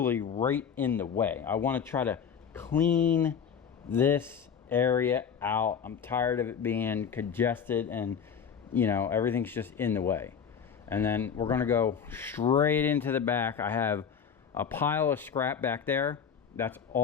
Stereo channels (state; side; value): quieter; right; 7.2 dB